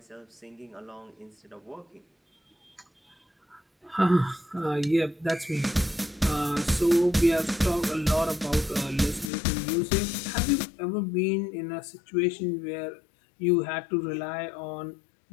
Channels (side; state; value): right; drops out; at 9.3 s